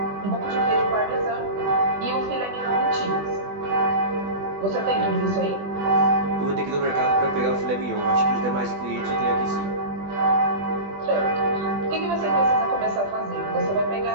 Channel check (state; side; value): late; left; 20 ms